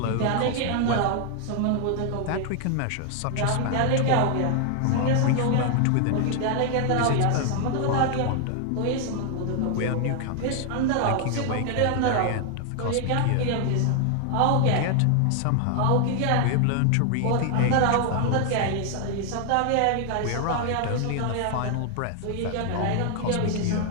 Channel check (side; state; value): both; different; correlation 0.00